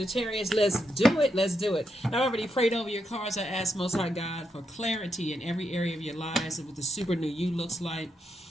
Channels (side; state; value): both; normal; correlation 0.82